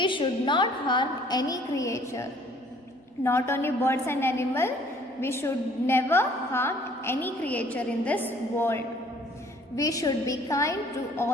should not harm any creature. Not only birds and animal, we should never harm any creature in this world. We should be kind to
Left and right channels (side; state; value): both; normal; correlation 0.57